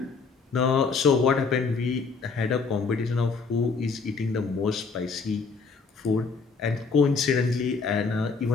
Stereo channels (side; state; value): right; quieter; 4.8 dB